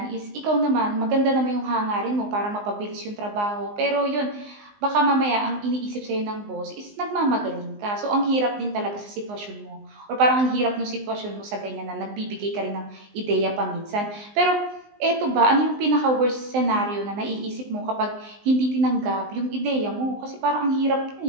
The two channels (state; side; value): late; left; 19 ms